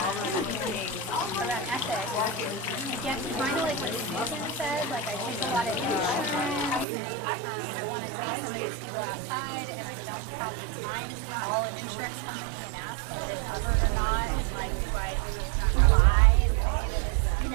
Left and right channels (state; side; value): drops out; left; at 6.9 s